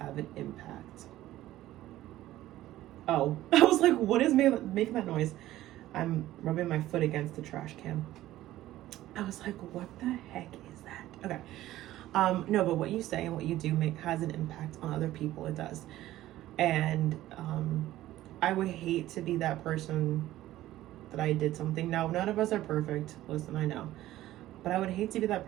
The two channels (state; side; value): quieter; left; 14.8 dB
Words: an impact. Oh, I was like, what is making that noise? I'm rubbing my foot against the trash can. I was like, what the heck is that? Okay. No, but what you say and what you do has an impact on other people. It does. And I would hate to be that person that I did something. Now, none of us are perfect. Listen, I know. But I would hate to be that